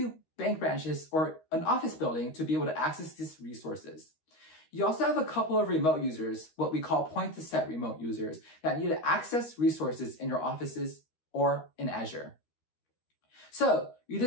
bank branches, or an office building to be able to access these resources. You also have a couple of remote users, what we call point-to-set remote users, that need to access resources in your offices or in Azure. So you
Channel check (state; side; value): late; right; 13 ms